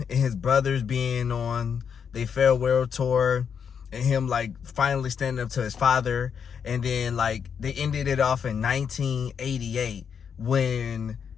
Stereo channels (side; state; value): right; quieter; 7.1 dB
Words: and his brothers being on their farewell tour and him like finally standing up to his father, and then like they ended it off in 1988 when